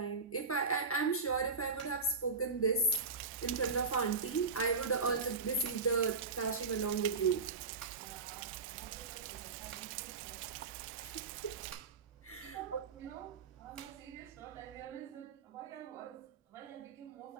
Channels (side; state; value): left; quieter; 4.4 dB